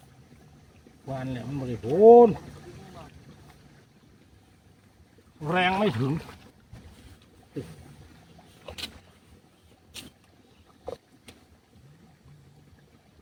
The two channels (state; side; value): identical; both; correlation 1.00